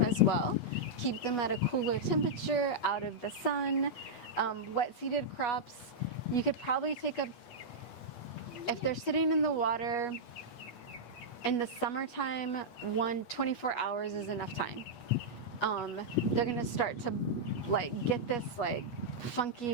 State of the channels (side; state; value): right; late; 8.3 ms